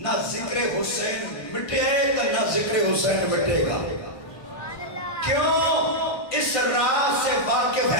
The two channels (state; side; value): late; right; 1.5 ms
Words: ذکر حسین مٹے تو نہ ذکر حسین مٹے گا کیوں اس راز سے واقف